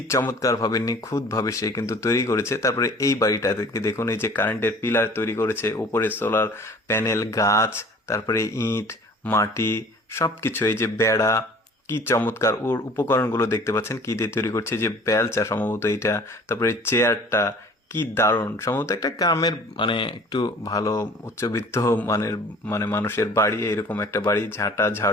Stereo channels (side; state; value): both; normal; correlation 0.49